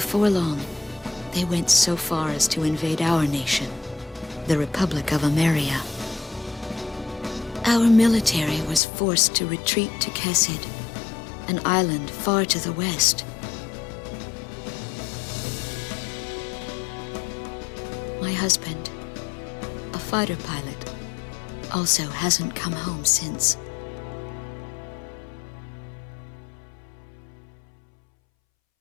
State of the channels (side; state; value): right; drops out; at 8.8 s